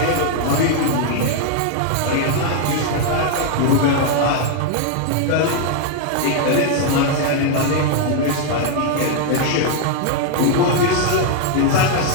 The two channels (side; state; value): both; different; correlation 0.00